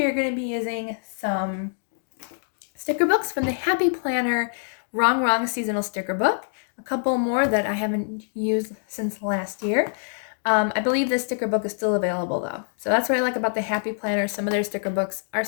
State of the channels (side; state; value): right; silent; digital silence